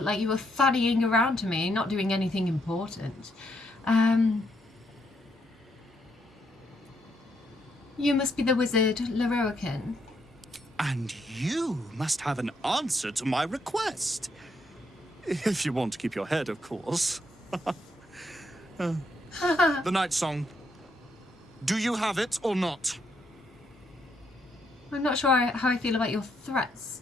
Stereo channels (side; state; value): both; normal; correlation 0.76